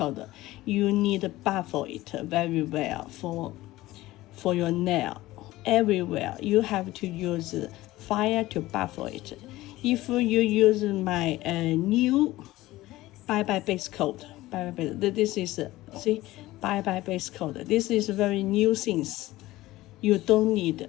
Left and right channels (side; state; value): right; quieter; 17.4 dB